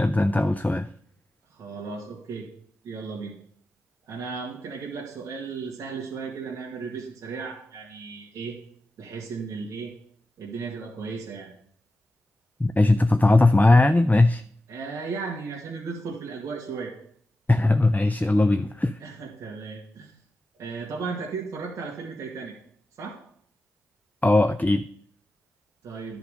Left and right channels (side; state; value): both; normal; correlation 0.93